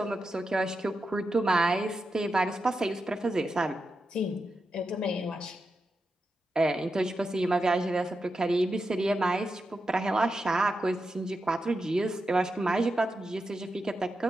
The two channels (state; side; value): normal; both; correlation 0.88